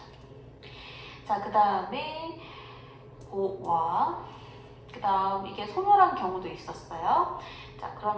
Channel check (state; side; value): identical; both; correlation 1.00